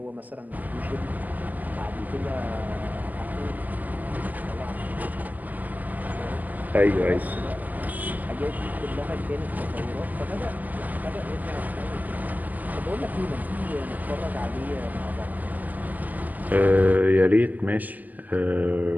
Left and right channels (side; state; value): left; late; 0.081 ms